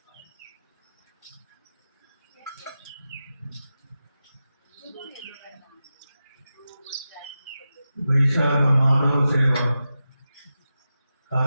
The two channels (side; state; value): both; inverted; correlation -0.92